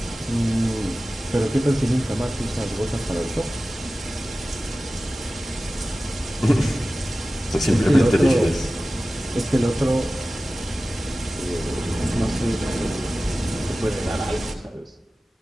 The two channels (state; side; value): normal; both; correlation 0.96